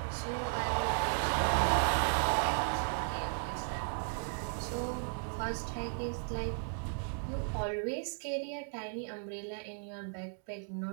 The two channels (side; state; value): left; silent; 54 dB below the other